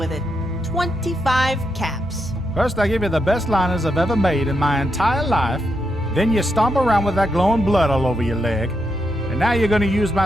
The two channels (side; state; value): both; normal; correlation 0.82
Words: it. 25 caps. First I give you the best liners I've ever made in my entire life, then you stomp around with that glowing blood all over your leg, and now you're gonna use